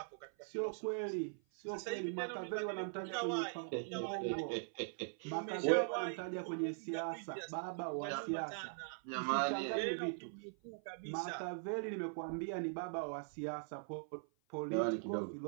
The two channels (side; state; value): left; silent; 50 dB below the other